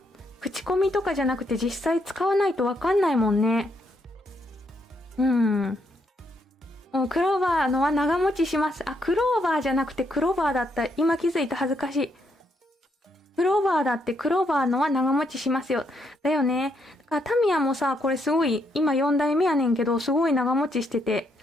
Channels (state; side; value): normal; both; correlation 0.76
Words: 口コミとかじゃなくて実際使わないとわかんないもんね。クローバーのは長持ちします。クローバーじゃなくてクローバーだった。今気づいた、恥ずかしい。クローバーだってクローバーのは長持ちしますよ。だよね。だからタミヤもさ、これすごい、今4代目やねんけど、すごい長持ちしてて。